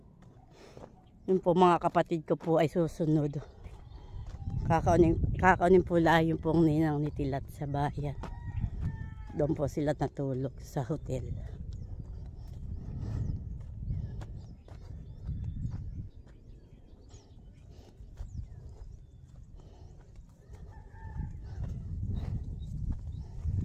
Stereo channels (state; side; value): identical; both; correlation 1.00